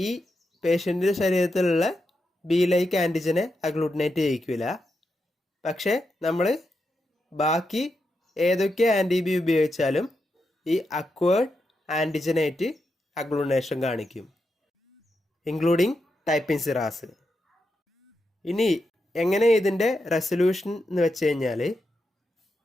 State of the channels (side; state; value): both; normal; correlation 0.86